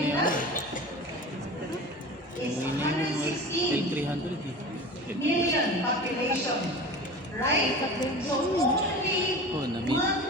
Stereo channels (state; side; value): normal; both; correlation 0.34